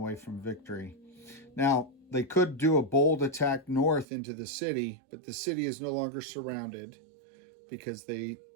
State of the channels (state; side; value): drops out; left; at 4.0 s